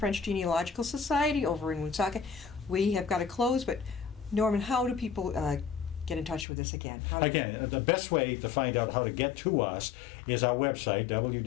Genealogical Society over in Woonsocket. We have got to close, but Norman, how do people get in touch with us again? Again, the best way to find out how to get to us is our website,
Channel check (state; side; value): drops out; right; at 6.5 s